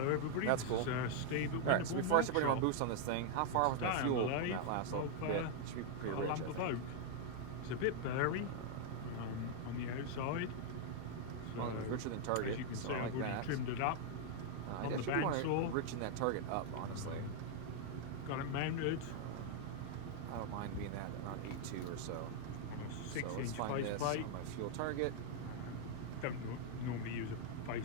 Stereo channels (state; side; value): different; both; correlation 0.00